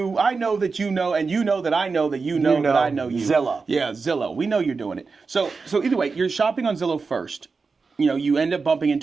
I know that you know, and you know that I know that you know that I know you. Zillow. Yeah, Zillow. We know you're doing it. So either way, you're shopping on Zillow first. You end up bumping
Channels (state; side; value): quieter; left; 4.6 dB